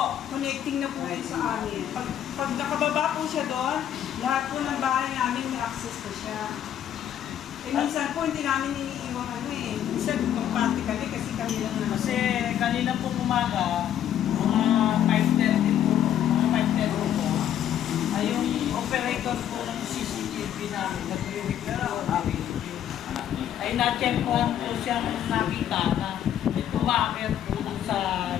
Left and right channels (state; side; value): quieter; right; 10.4 dB